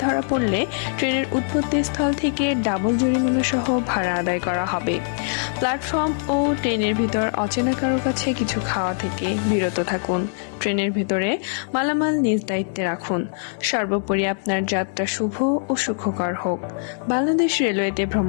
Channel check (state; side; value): silent; right; 58 dB below the other